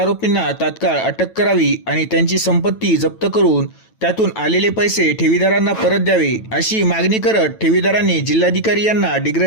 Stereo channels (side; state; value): right; late; 9.1 ms